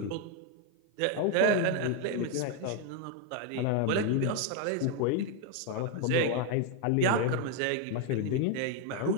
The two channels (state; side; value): different; both; correlation 0.01